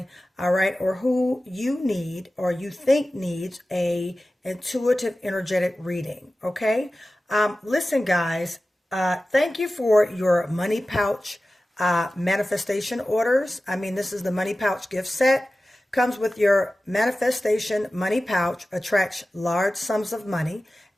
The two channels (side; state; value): both; normal; correlation 0.95